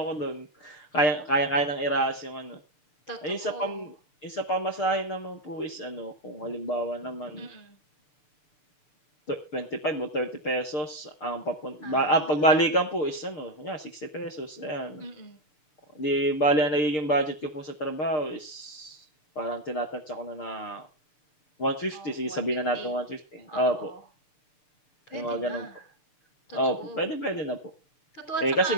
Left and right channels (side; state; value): right; late; 6.7 ms